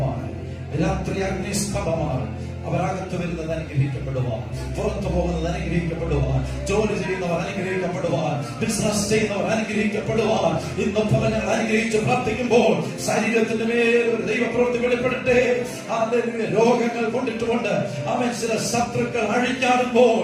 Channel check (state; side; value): identical; both; correlation 1.00